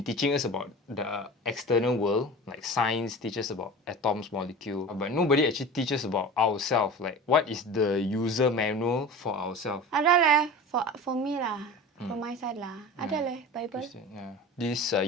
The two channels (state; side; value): normal; both; correlation 0.34